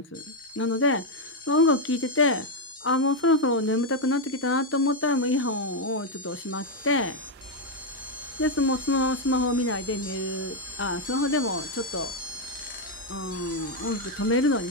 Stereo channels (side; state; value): both; normal; correlation 0.02